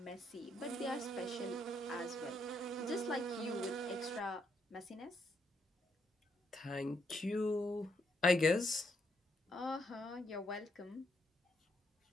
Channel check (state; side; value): normal; both; correlation 0.76